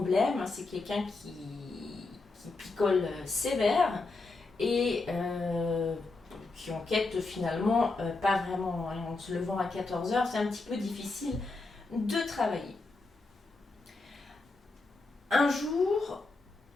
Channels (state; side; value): quieter; right; 3.5 dB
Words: C'est quelqu'un qui picole sévère, et qui enquête finalement pas vraiment. En se levant à 14h, c'est un petit peu difficile de travailler. Un jour,